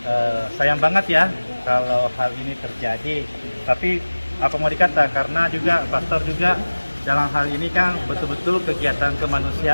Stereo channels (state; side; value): inverted; both; correlation -1.00